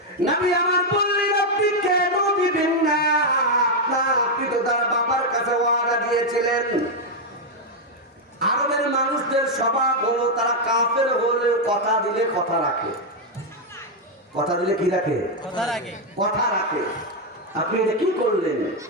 নবী আমার বললেন, আপনি কেন দিবেন না? আপনি তো তার বাবার কাছে ওয়াদা দিয়েছিলেন। আরবের মানুষদের স্বভাব হলো তারা কাফের হলেও কথা দিলে কথা রাখে। কথা দিলে কি রাখে? কথা রাখে। আপনি এটা কি করলেন?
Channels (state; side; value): normal; both; correlation 0.01